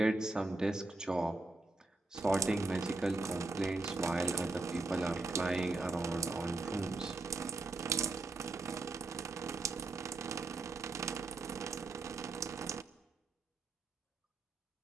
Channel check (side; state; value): left; quieter; 3.1 dB